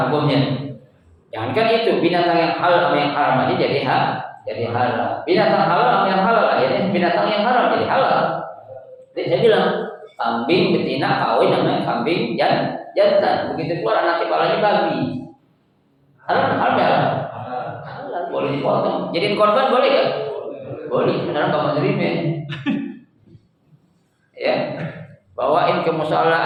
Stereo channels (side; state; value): both; identical; correlation 1.00